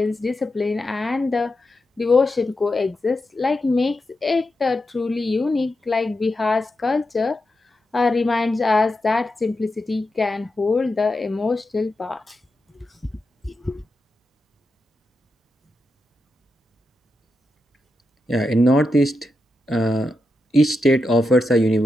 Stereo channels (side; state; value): both; normal; correlation 0.87